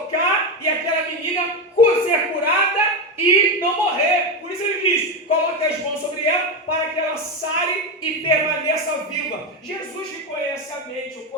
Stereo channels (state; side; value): normal; both; correlation 0.13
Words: e aquela menina ser curada e não morrer. Por isso ele diz: coloque as mãos sobre ela para que ela sare e permaneça viva. Jesus que conhece a mente, o